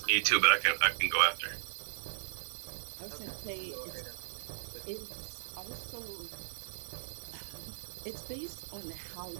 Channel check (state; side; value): silent; left; digital silence